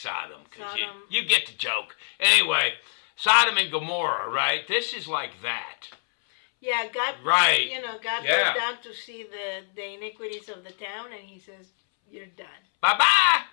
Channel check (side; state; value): right; silent; 61 dB below the other